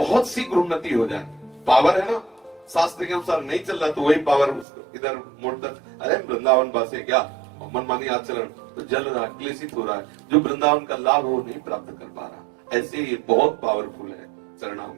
शीघ्र उन्नति हो जाए। पावर है ना, शास्त्र के अनुसार नहीं चल रहा तो वही पावर उसको इधर मोड़ता, अरे वृंदावन बासे क्या मनमानी आचरण, तो जल रहा, क्लेशित हो रहा है, जो वृंदावन का लाभ वो नहीं प्राप्त कर पा रहा। ऐसे ये बहुत पावरफुल है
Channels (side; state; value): left; drops out; at 4.7 s